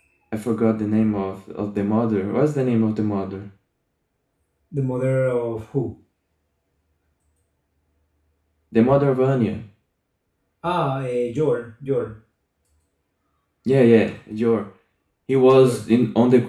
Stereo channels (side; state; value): both; identical; correlation 1.00